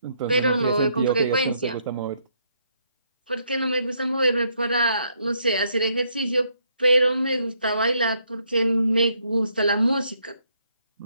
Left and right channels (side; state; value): both; inverted; correlation -0.73